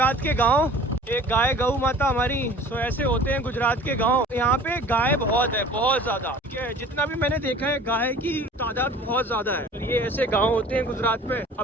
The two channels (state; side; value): normal; both; correlation 0.46